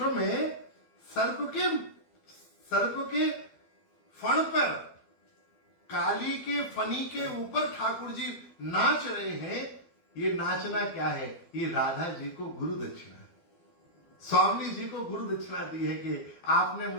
में सर्प के फण पर, काली के फनी के ऊपर ठाकुर जी नाच रहे हैं। ये नाचना क्या है? ये राधा जी को गुरु दक्षिणा, स्वामी जी को गुरु दक्षिणा दी है कि आपने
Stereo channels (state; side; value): late; right; 12 ms